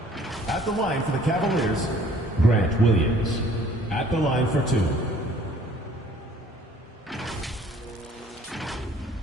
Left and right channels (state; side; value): normal; both; correlation 0.56